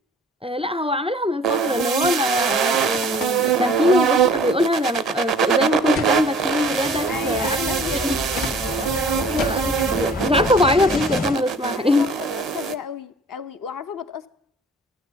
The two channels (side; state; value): both; normal; correlation 0.50